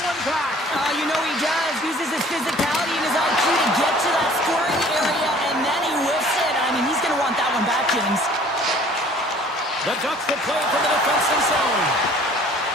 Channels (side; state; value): both; normal; correlation 0.52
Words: The Ducks will play from the defensive zone.